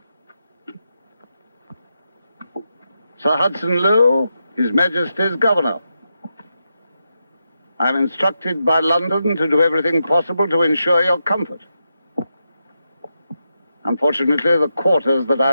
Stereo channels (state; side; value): inverted; both; correlation -0.86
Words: Sir Hudson Lowe, His Majesty's Governor. I'm instructed by London to do everything possible to ensure your comfort. Unfortunately, the quarters that